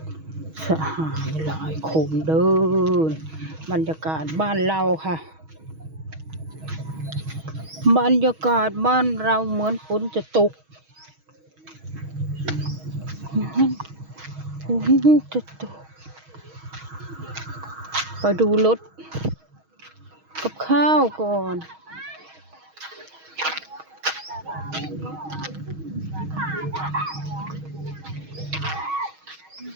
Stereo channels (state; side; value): late; left; 6.3 ms